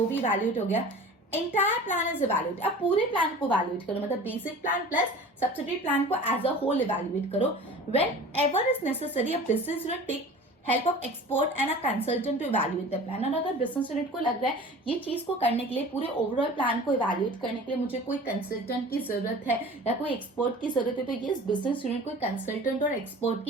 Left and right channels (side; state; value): both; normal; correlation 0.41